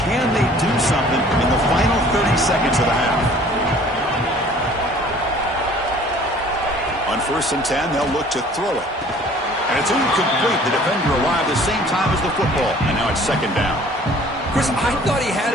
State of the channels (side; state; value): both; normal; correlation 0.52